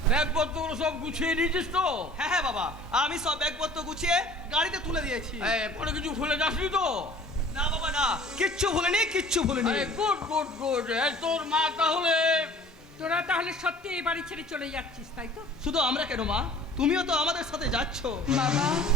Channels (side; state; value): both; normal; correlation 0.47